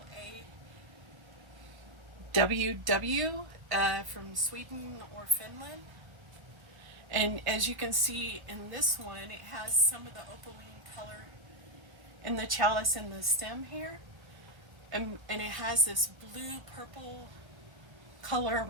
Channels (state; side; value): late; left; 1.3 ms